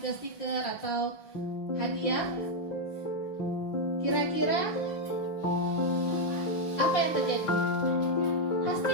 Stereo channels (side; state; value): right; late; 5.8 ms